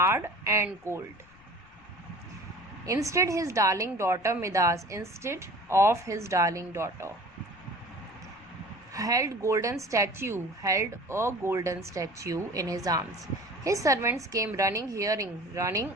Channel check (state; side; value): noise; left; rumble, 28 dB below the sound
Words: and cold. Instead of his darling daughter held a golden statue in his arms. His servants came running